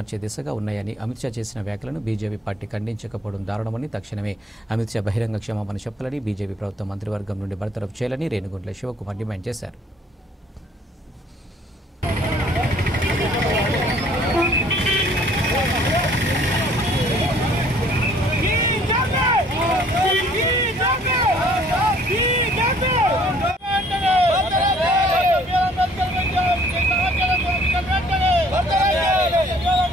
దిశగా ఉన్నాయని, అమిత్ షా చేసిన వ్యాఖ్యలను బీజేపీ పార్టీ ఖండించకపోవడం దారుణమని, తక్షణమే అమిత్ షా బహిరంగ క్షమాపణ చెప్పాలని, బీజేపీ ప్రభుత్వం మంత్రివర్గం నుండి బర్తరఫ్ చేయాలని రేణుగుంట్ల శివకుమార్ డిమాండ్ చేశారు.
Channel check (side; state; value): both; normal; correlation 0.58